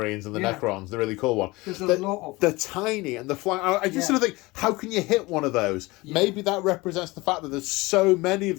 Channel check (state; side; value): quieter; right; 22.2 dB